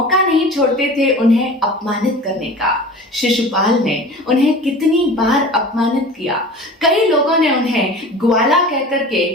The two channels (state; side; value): normal; both; correlation 0.38